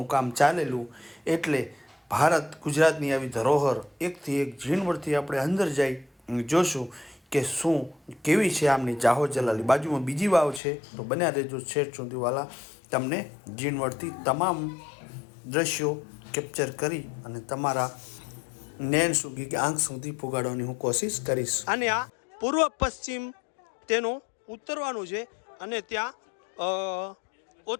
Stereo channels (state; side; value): drops out; right; at 10.6 s